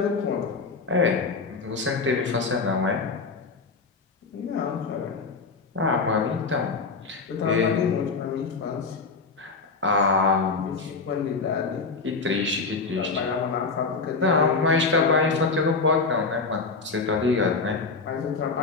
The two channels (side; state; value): right; quieter; 4.3 dB